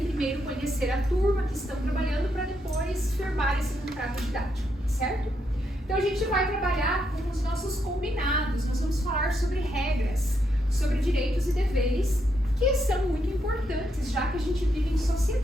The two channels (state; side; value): normal; both; correlation 0.79